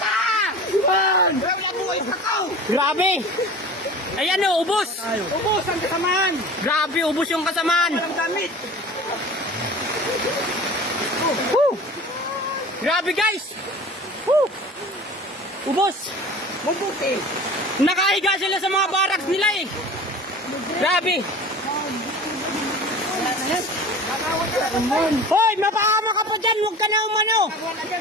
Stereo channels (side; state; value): both; normal; correlation 0.39